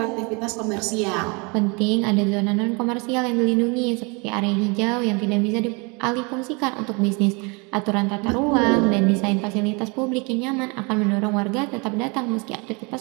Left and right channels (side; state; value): left; quieter; 30.7 dB